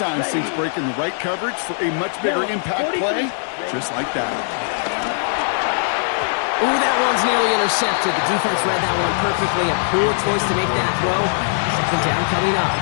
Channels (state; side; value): silent; right; digital silence